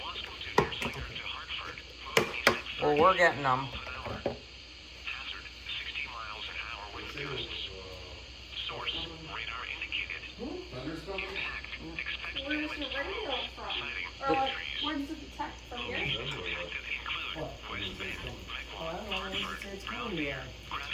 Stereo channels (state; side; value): identical; both; correlation 1.00